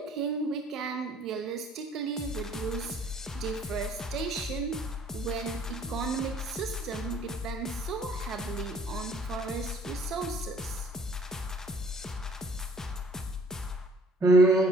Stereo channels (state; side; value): normal; both; correlation 0.57